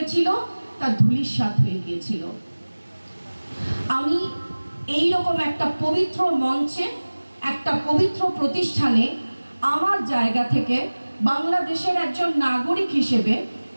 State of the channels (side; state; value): both; inverted; correlation -1.00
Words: তা ধূলিসাৎ হয়ে গিয়েছিল। আমি এই রকম একটা পবিত্র মঞ্চে, একটা পবিত্র প্রতিষ্ঠানে আমার জায়গা থেকে বাংলাদেশের একজন নাগরিক হিসেবে